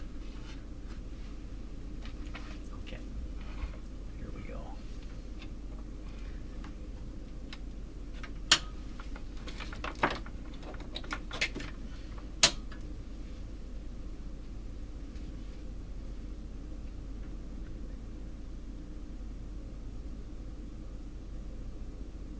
Okay, here we go.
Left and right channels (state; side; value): identical; both; correlation 1.00